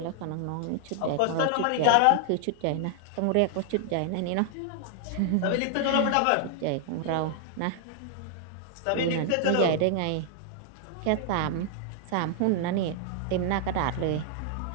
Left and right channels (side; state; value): both; different; correlation 0.00